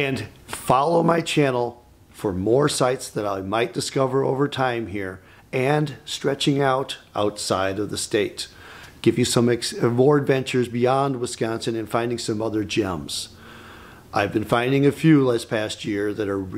follow my channel for more sites that I might discover over time here and stretching out outside of the state. Give you some more adventures beyond Wisconsin and finding some other gems. I've been finding a few this past year that are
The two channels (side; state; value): both; identical; correlation 1.00